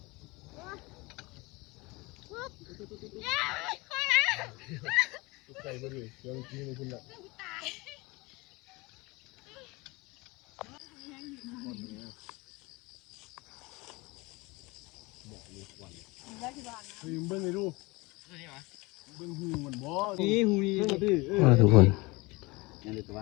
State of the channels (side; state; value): right; quieter; 24.1 dB